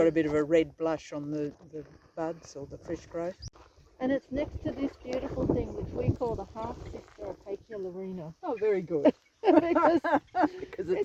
a bit of a red blush on the buds or the fresh growth. And it's next to this beautiful thing which we call the half-sister of Acacia larina. Oh, very good. Because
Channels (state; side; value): identical; both; correlation 1.00